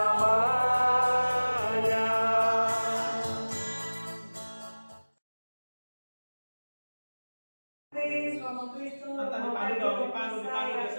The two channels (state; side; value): inverted; both; correlation -1.00